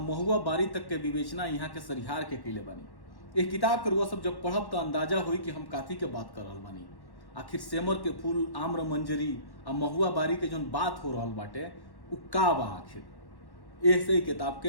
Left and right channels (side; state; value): right; late; 1.1 ms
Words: महुआ बारी तक के विवेचना यहाँ के सरिहार के किले बनी। एक किताब के रुआ सब जब पढ़ब तो अंदाजा हुई कि हम काथी के बात कर रहल बानी। आखिर सेमर के फूल, आम्र मंजरी और महुआ बारी के जोन बात हो रहल बाटे उ का बा आखिर। ऐसे ही किताब